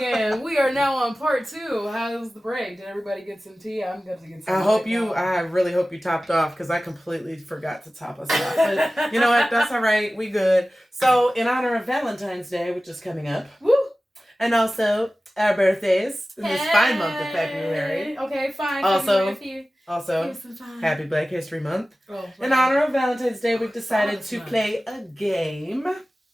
We are now on part 2. How's the break? Did everybody get some tea? I'm going to get some. I really hope you topped off because I completely forgot to top us off. But you know what? That's all right. We good. So, in honor of Valentine's Day, which is coming up, woo, and also our birthdays in this fine month of February. Okay, fine. Also, Happy Black History Month. Oh, in honor of Valentine's Day, we've decided to play a game.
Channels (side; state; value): both; normal; correlation 0.96